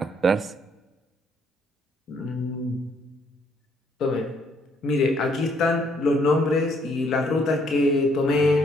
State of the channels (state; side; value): normal; both; correlation 0.68